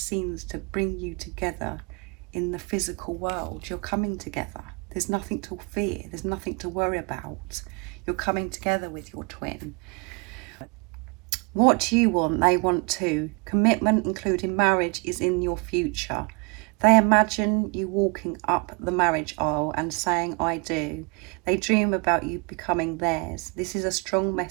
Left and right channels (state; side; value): quieter; left; 31.3 dB